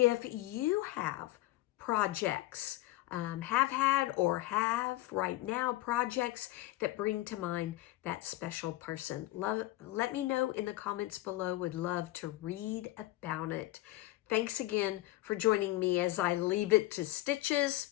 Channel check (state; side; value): quieter; right; 17.5 dB